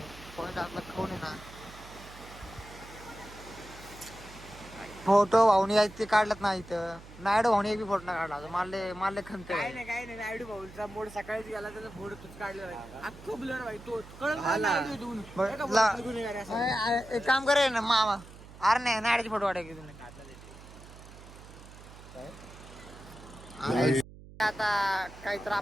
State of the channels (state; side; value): noise; right; hum, 18 dB below the sound